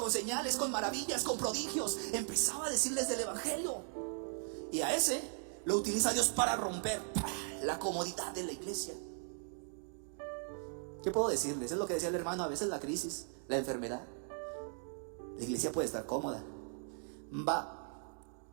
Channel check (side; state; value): left; silent; 52 dB below the other